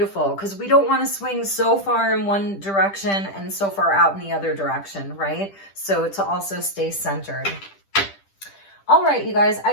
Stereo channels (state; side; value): late; right; 10 ms